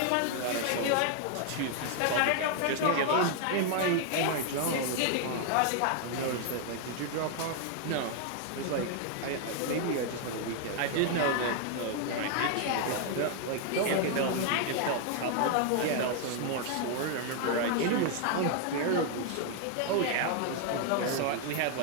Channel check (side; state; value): both; different; correlation 0.00